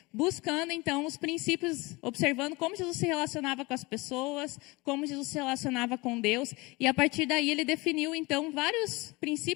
buscando, então, os princípios, observando como Jesus se relacionava com as pessoas, como Jesus se relacionava com Deus. E, a partir daí, ele definiu, então, vários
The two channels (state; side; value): quieter; right; 24.0 dB